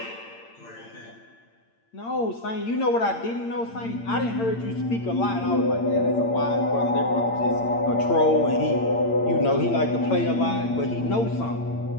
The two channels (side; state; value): right; late; 8.8 ms